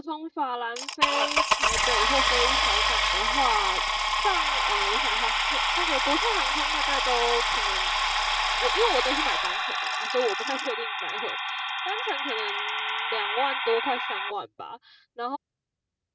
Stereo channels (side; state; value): both; identical; correlation 1.00